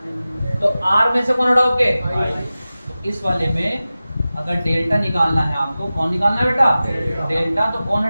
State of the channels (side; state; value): both; inverted; correlation -0.95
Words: तो आर में से कौन हटाओगे, तो इस वाले में अगर डेल्टा निकालना है आपको, कौन निकालना है बेटा, डेल्टा, तो कौन